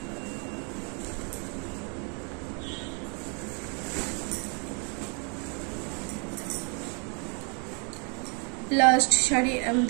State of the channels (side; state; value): left; quieter; 36.3 dB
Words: লাস্ট শাড়ি আমি